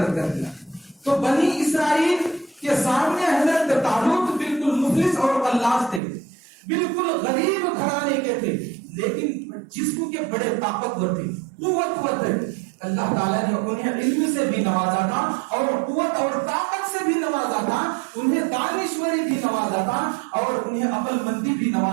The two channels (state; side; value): drops out; left; at 6.0 s